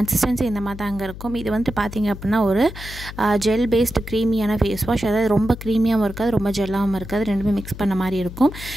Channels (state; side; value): noise; left; hum, 12 dB below the sound